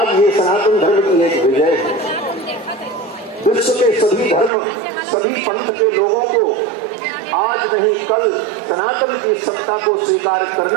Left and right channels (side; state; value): left; drops out; at 4.5 s